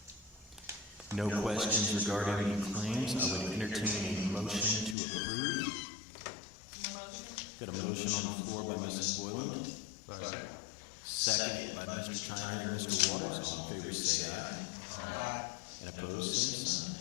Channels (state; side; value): drops out; right; at 5.0 s